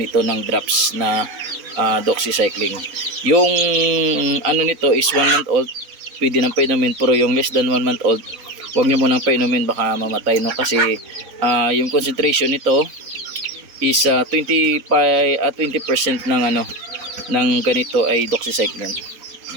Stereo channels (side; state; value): left; late; 4.1 ms